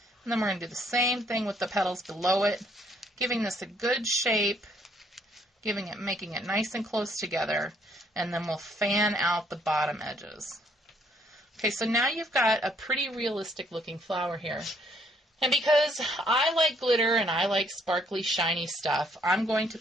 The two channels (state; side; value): normal; both; correlation 0.67